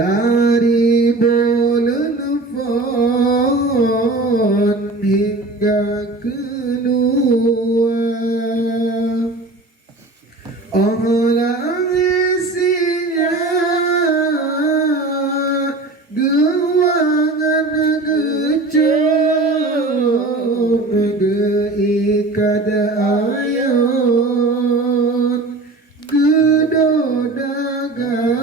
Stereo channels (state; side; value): quieter; left; 3.1 dB